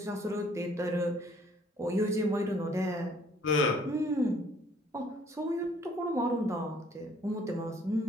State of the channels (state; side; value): normal; both; correlation 0.61